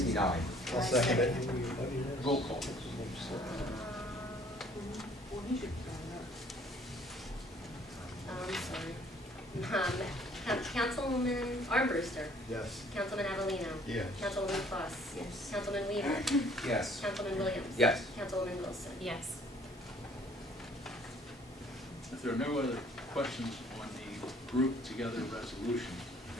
I'll second it. Roll call. I'm sorry. Councilwoman Armbruster. Yes. Councilman Avellino. Yes. Councilwoman Foss. Yes. Councilman Weaver. Yes. Councilman Williams. Yes. Councilwoman Wilson. Yes. If there are no other questions on the group together resolution,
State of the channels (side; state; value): both; normal; correlation 0.58